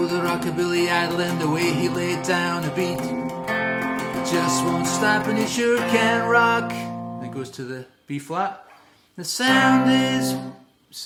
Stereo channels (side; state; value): both; identical; correlation 1.00